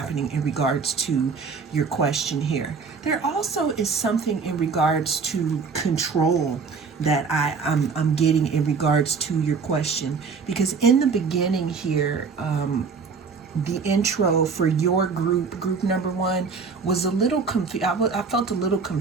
in regards to your question here. There also is something in regards to control that I'm getting in regards to your question, because in the beginning here, the intro for your group number 1, was a little confused. I felt a little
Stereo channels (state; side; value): quieter; left; 5.1 dB